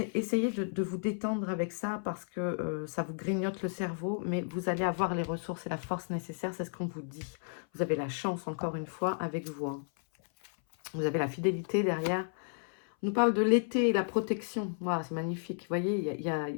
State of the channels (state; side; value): silent; right; 56 dB below the other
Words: Essayez de vous détendre avec ça parce que ça vous grignote le cerveau. Mais vous allez avoir les ressources et la force nécessaires. C'est ce qu'on vous dit. Vous avez la chance, encore une fois, avec vous. Hein. Vous avez la fidélité derrière. On nous parle de l'été et la protection. Voilà, c'est magnifique. Vous voyez, il